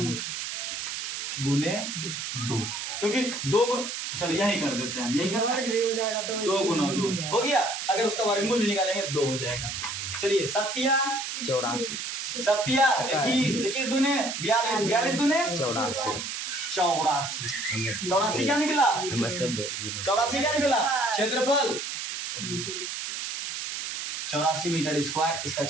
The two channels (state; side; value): noise; right; hiss, 5 dB below the sound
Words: गुने 2, क्योंकि 2 चलो यही कर देते हैं, यही कर देंगे। हो जाएगा तो 2 गुना 2 हो गया। अगर उसका वर्गमूल भी निकालेंगे 2 हो जाएगा। चलिए 7 84 7 21 21 दुने 42 42 दुने 84 84 क्या निकला? 84 क्या निकला? क्षेत्रफल 84 मीटर स्क्वायर इसका